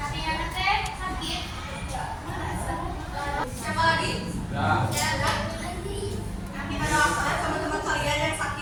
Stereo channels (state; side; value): identical; both; correlation 1.00